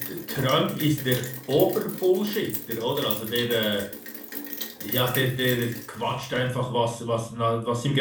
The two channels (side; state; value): both; identical; correlation 1.00